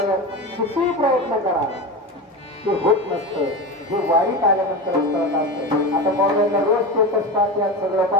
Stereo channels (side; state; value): both; normal; correlation 0.23